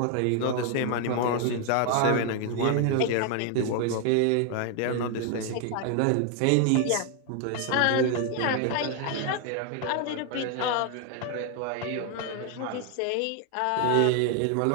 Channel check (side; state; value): both; different; correlation 0.01